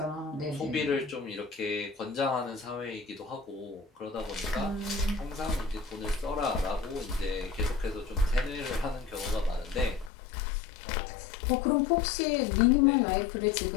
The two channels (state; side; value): drops out; right; at 10.1 s